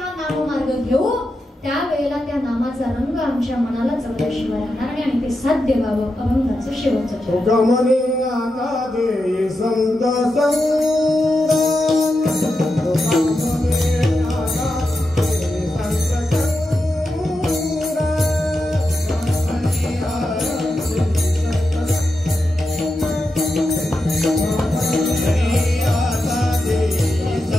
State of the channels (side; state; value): both; normal; correlation 0.88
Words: नाममार्ग घेऊ त्यावेळेला त्या नामाचा रंग आमच्या मनाला चढल्याशिवाय राहणार नाही आणि ते साध्य व्हावं. अभंगाचं शेवटचं संत